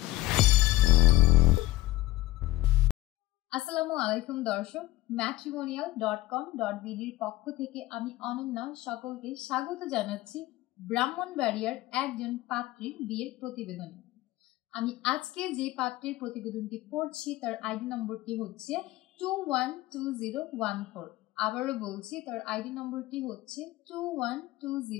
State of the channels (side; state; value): right; quieter; 16.7 dB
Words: আসসালামু আলাইকুম দর্শক, matrimonial.com.bd এর পক্ষ থেকে আমি অনন্যা সকলকে স্বাগত জানাচ্ছি ব্রাহ্মণবাড়িয়ার একজন পাত্রীর বিয়ের প্রতিবেদনে। আমি আজকে যে পাত্রের প্রতিবেদনটি পড়ছি তার আইডি নম্বরটি হচ্ছে 212014। আবারও বলছি, তার আইডি নম্বরটি হচ্ছে